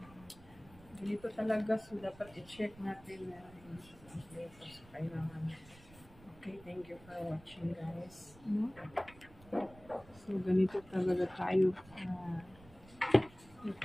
Dito talaga, so dapat i-check natin na hindi kompleto. So, kailangan. Okay, thank you for watching guys. No? So, ganito talaga tayo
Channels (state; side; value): noise; right; rumble, 22 dB below the sound